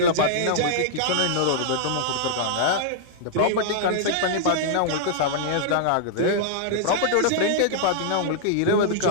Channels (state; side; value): different; both; correlation -0.01